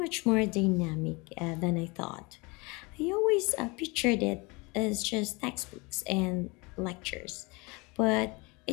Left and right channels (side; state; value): right; quieter; 26.8 dB